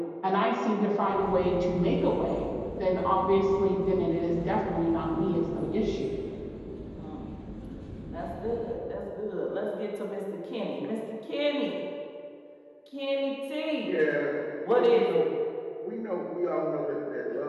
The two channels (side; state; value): both; identical; correlation 1.00